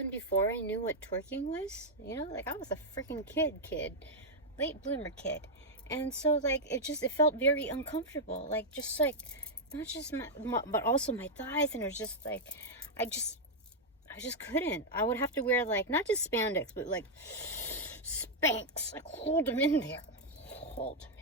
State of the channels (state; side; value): normal; both; correlation -0.02